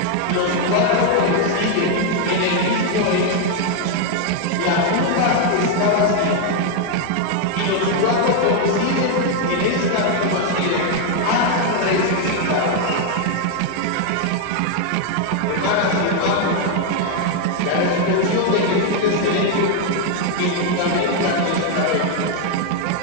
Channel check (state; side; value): different; both; correlation 0.01